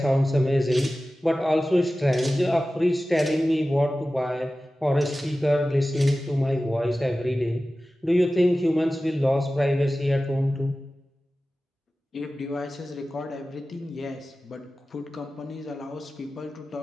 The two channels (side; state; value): both; normal; correlation 0.95